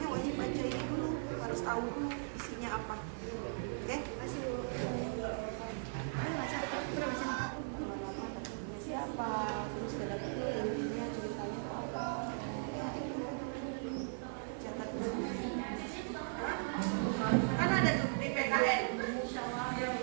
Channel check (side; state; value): left; silent; digital silence